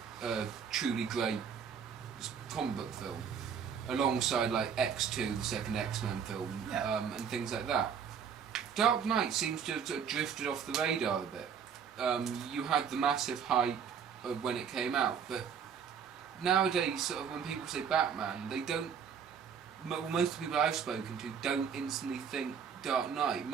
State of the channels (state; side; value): quieter; left; 7.2 dB